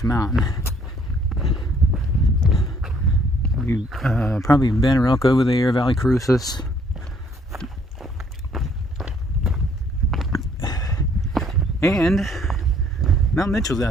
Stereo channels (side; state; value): both; normal; correlation 0.64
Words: Mountain. You probably Banner Elk over there, Valley Crucis. And Mount Mitchell's